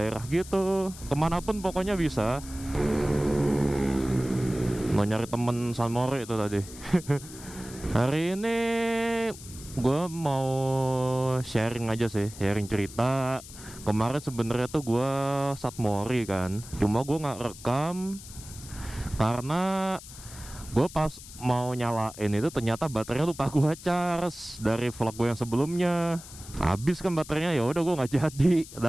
gitu, kemanapun pokoknya bisa. Mau nyari temen San Mori itu tadi. Hari ini gue mau sharing aja sih, sharing cerita. Kemarin sebenarnya tuh gue San Mori kan, cuma gue nggak rekam karena gue pas mau nyalain itu ternyata baterainya lupa gue charge dari vlog gue yang sebelumnya. Habis kan baterainya, ya udah gue nggak jadi.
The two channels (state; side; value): noise; left; hiss, 16 dB below the sound